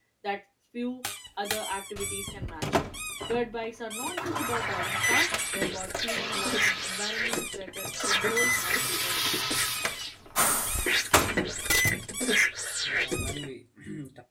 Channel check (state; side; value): identical; both; correlation 1.00